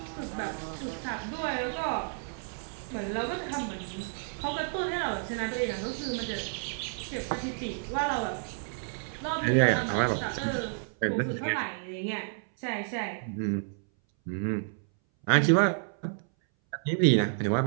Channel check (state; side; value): silent; left; 57 dB below the other